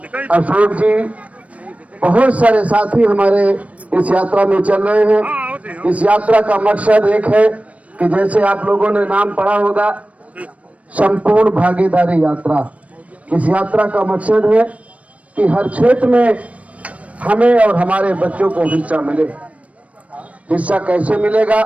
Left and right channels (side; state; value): left; late; 0.066 ms